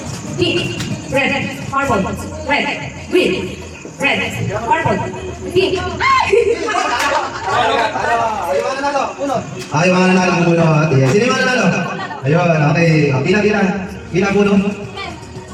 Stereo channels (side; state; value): both; identical; correlation 1.00